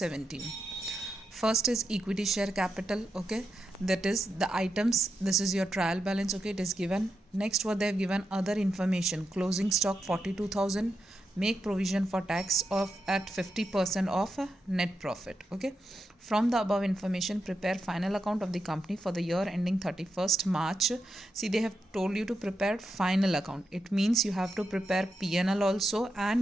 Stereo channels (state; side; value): normal; both; correlation 0.86